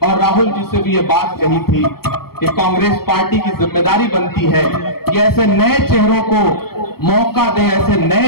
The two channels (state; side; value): late; right; 0.95 ms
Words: और राहुल जी से भी ये बात कही थी कि कांग्रेस पार्टी की जिम्मेदारी बनती है कि ऐसे नए चेहरों को मौका दे, ऐसे